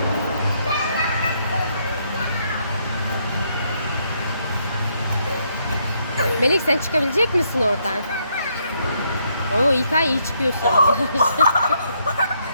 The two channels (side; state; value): both; inverted; correlation -0.74